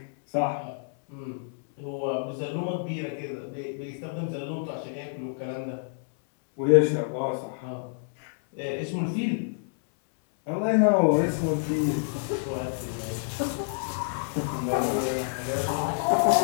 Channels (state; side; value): silent; right; 59 dB below the other